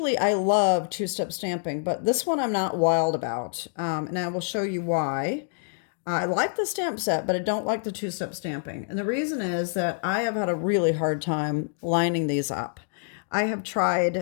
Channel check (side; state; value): right; silent; digital silence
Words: I love two-step stamping, but this one I'm not wild about. And I will show you why. I like the stamp set, but I don't like the two-step stamping. And the reason is that I have had a really hard time lining these up. I have